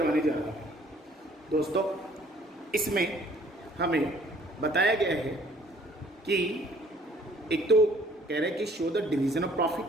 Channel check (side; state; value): both; normal; correlation 0.58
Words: जा रहा हूँ। दोस्तों, इसमें हमें बताया गया है कि एक तो कह रहे हैं कि show the division of profit,